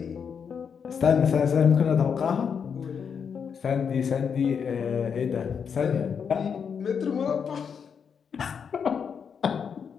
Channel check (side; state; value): right; quieter; 6.8 dB